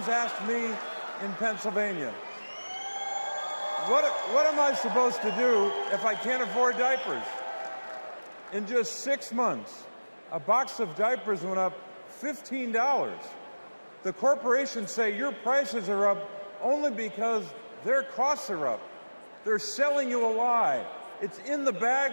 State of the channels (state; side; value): inverted; both; correlation -1.00